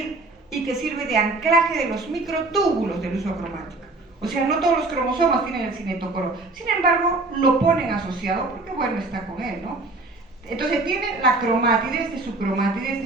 y que sirve de anclaje de los microtúbulos del uso cromático. O sea, no todos los cromosomas tienen el cinetocoro. Sin embargo, lo ponen asociado porque, bueno, está con él, ¿no? Entonces tiene la cromátide, esta es su cromátide, esta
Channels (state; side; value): quieter; left; 3.2 dB